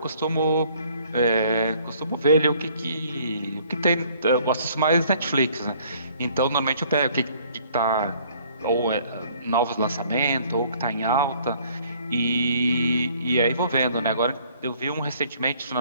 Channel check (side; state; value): both; inverted; correlation -0.59